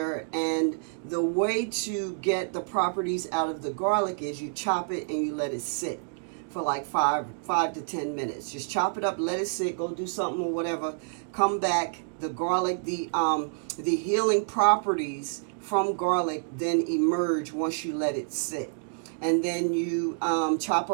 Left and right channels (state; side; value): silent; left; digital silence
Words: and the way to get the properties out of the garlic is you chop it and you let it sit for like 5 to 10 minutes. Just chop it up, let it sit, go do something or whatever. Come back. The garlic, the healing properties from garlic then emerge once you let it sit. And then you chop